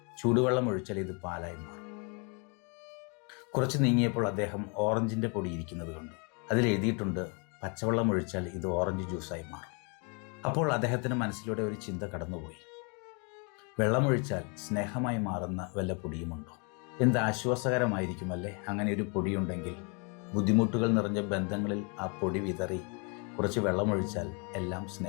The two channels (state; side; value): quieter; right; 35.0 dB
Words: ചൂടുവെള്ളം ഒഴിച്ചാൽ ഇത് പാലായി മാറും. കുറച്ച് നീങ്ങിയപ്പോൾ അദ്ദേഹം ഓറഞ്ചിൻ്റെ പൊടി ഇരിക്കുന്നത് കണ്ടു. അതിൽ എഴുതിയിട്ടുണ്ട്, പച്ചവെള്ളം ഒഴിച്ചാൽ ഇത് ഓറഞ്ച് ജ്യൂസായി മാറും. അപ്പോൾ അദ്ദേഹത്തിന് മനസ്സിലൂടെ ഒരു ചിന്ത കടന്നുപോയി. വെള്ളമൊഴിച്ചാൽ സ്നേഹമായി മാറുന്ന വല്ല പൊടിയുമുണ്ടോ? എന്ത് ആശ്വാസകരമായിരിക്കുമല്ലേ അങ്ങനെ ഒരു പൊടിയുണ്ടെങ്കിൽ. ബുദ്ധിമുട്ടുകൾ നിറഞ്ഞ ബന്ധങ്ങളിൽ ആ പൊടി വിതറി കുറച്ച് വെള്ളമൊഴിച്ചാൽ എല്ലാം